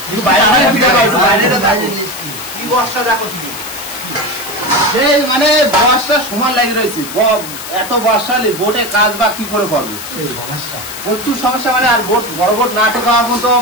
কিন্তু বাইরে কি বর্ষা দেখো শুধু, সেই মানে বর্ষা সমান লাগে রয়েছে। এত বর্ষা হলে বোটে কাজ বা কি করে করবে, প্রচুর সমস্যা। মানে আর বোট বড় বোট না টেকার মতো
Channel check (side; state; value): left; noise; hiss, 11 dB below the sound